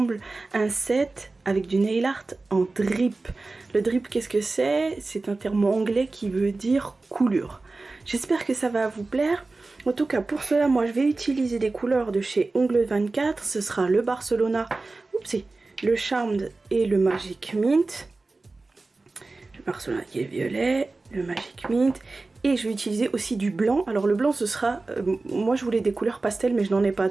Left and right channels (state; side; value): quieter; left; 3.5 dB